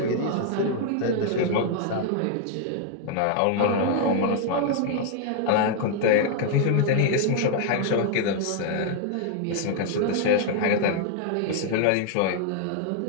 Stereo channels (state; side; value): different; both; correlation 0.00